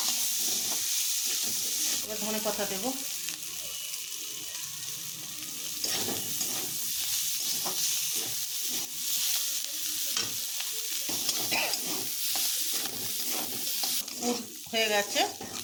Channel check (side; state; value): both; identical; correlation 1.00